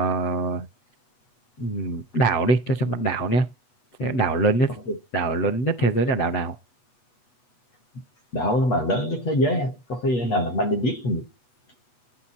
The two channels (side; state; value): right; late; 8.2 ms